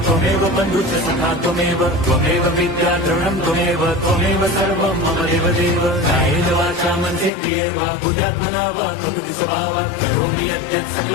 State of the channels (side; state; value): right; drops out; at 7.3 s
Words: बंधुश्च सखा त्वमेव विद्या द्रवणं त्वमेव सर्वं मम देवदेव। कायेन वाचा मनसेन्द्रियैर्वा बुद्ध्यात्मना वा प्रकृति स्वभावात् करोमि यद्यत्